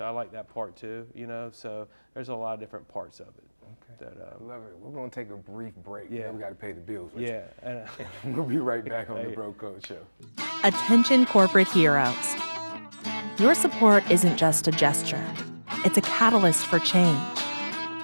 I like that part too, you know. So there's a lot of different parts of it. Okay. That, love it. We're going to take a brief break. Yeah. We got to pay the bills. Yeah. We'll be right back on the Bro Code Show. Attention corporate heroes. Your support isn't just a gesture. It's a catalyst for change.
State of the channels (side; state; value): both; inverted; correlation -1.00